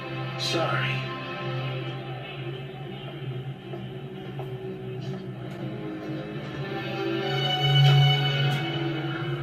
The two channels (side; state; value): both; identical; correlation 1.00